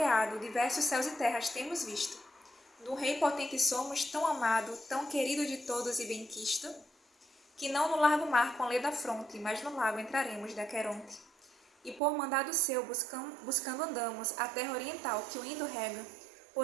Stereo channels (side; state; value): left; drops out; at 12.0 s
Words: diversos céus e terras temos visto. Do rei potente somos tão amado, tão querido de todos e benquisto, que não no largo mar com lê da fronte, mas no lago entraremos de Aqueronte. E por mandado seu buscando andamos a terra oriental que o Indo rega,